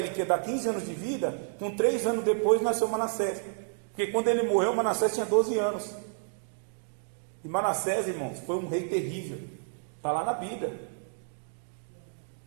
que ia dar 15 anos de vida, com 3 anos depois nasceu Manassés. Porque quando ele morreu, Manassés tinha 12 anos. E Manassés, irmãos, foi um rei terrível. Está lá na Bíblia.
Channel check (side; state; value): left; silent; digital silence